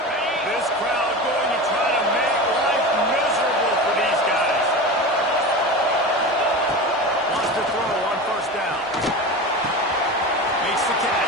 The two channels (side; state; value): both; normal; correlation 0.28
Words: This crowd going to try to make life miserable for these guys. Wants to throw on first down. Makes the